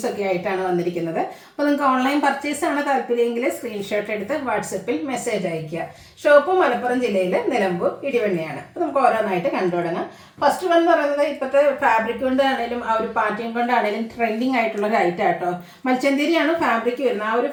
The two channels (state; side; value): identical; both; correlation 1.00